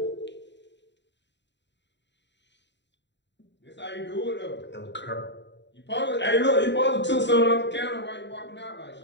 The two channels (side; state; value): right; late; 0.52 ms